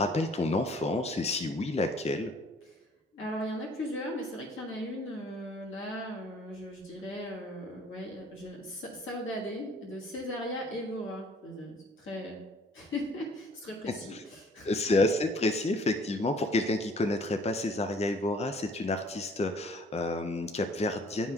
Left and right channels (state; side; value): normal; both; correlation 0.56